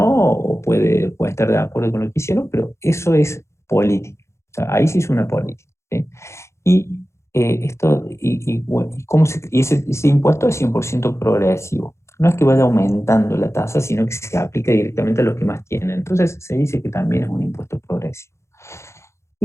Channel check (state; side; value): late; right; 0.13 ms